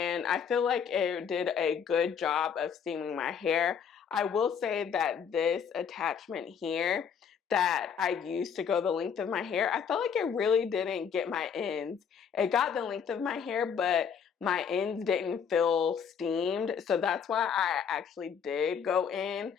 I feel like it did a good job of steaming my hair. I will say that this attachment here that I used to go the length of my hair, I felt like it really didn't get my ends. It got the length of my hair, but my ends didn't feel steamed. So that's why I actually did go in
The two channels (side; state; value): right; quieter; 7.2 dB